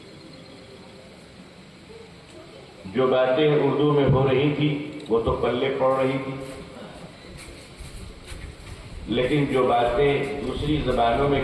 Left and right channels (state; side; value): identical; both; correlation 1.00